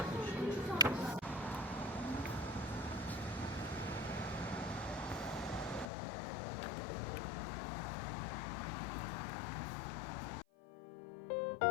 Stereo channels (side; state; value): right; drops out; at 5.9 s